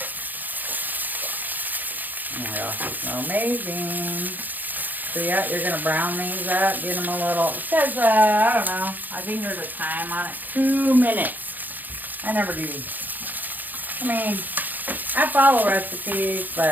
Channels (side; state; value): left; late; 0.085 ms